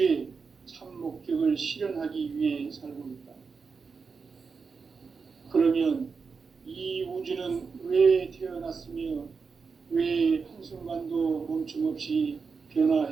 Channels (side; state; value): left; quieter; 5.2 dB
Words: 참 목적을 실현하기 위해 살고 있다. 그러면 이 우주는 왜 태어났으며 왜 한순간도 멈춤없이